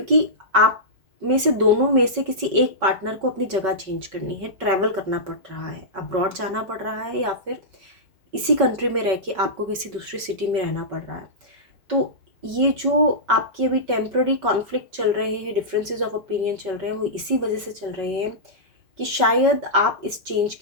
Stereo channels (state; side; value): late; left; 5.3 ms